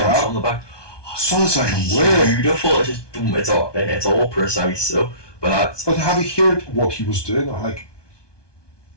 on the back? So it's like beautiful. It's just boom. It's all precise. So, but have you heard what he was doing? Like,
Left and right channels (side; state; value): right; late; 1.2 ms